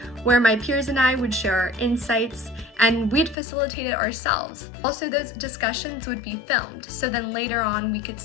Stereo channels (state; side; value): drops out; right; at 3.4 s